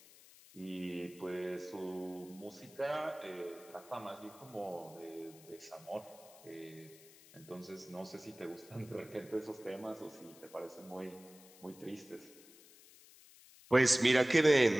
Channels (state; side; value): noise; left; hiss, 22 dB below the sound